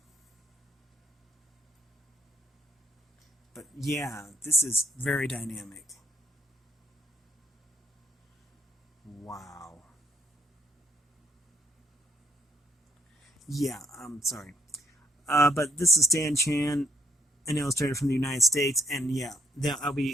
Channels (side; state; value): both; normal; correlation 0.69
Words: but yeah, this is very dynamic. Wow. Yeah, I'm sorry. But this is Stan Chan, an illustrator from the United States, and yeah, I'll